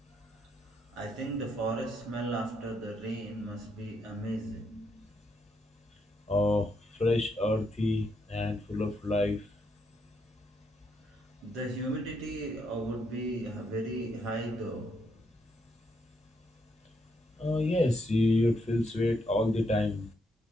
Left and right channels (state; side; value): normal; both; correlation 0.77